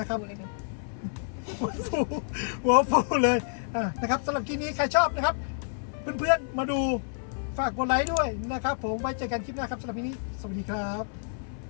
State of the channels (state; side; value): silent; right; 59 dB below the other